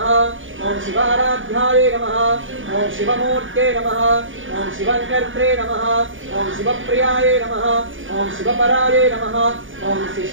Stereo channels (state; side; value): late; left; 0.57 ms